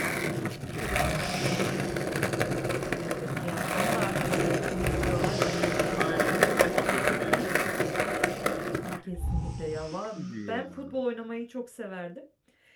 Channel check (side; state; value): both; identical; correlation 1.00